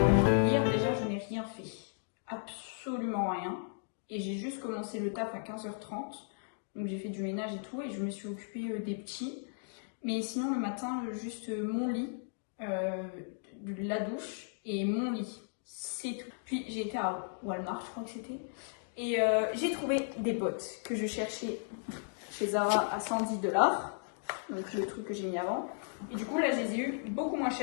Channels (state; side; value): silent; right; digital silence